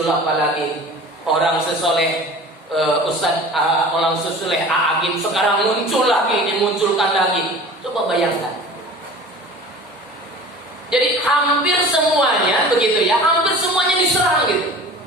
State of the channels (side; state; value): both; normal; correlation 0.40